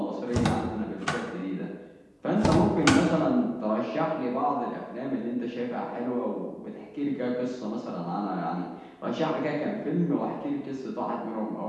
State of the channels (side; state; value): both; identical; correlation 1.00